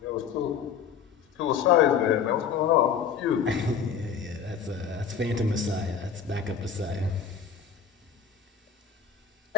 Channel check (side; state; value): right; quieter; 7.2 dB